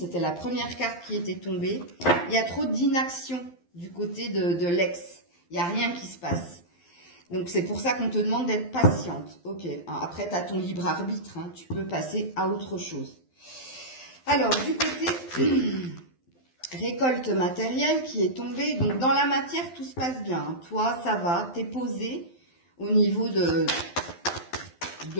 la première carte qui était tombée. Il y a trop d'inaction du côté de l'ex. Il n'y a rien qui se passe. Donc, c'est pour ça qu'on te demande d'être patiente. Ok. Après, tu as ton libre arbitre. Hein. Tu peux passer à autre chose. Alors, du côté récolte matérielle qui est tombée. Donc, dans la matière, tout se passe bien. Hein. Toi, ça va. Tu es posé au niveau de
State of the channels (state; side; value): late; right; 12 ms